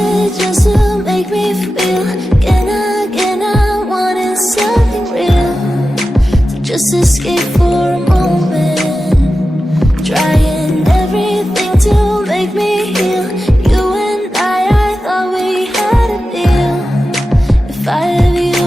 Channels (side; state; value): both; normal; correlation 0.93